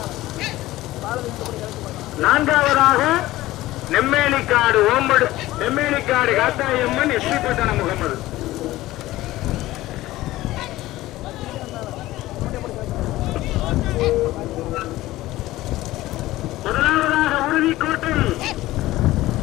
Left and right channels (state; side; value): quieter; right; 16.8 dB